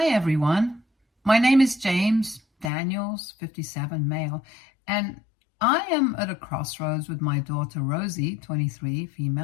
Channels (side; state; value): right; drops out; at 2.7 s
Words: everyone. My name is James Daniels, 57, male, and I am at a crossroads with my daughter Rosie, 23,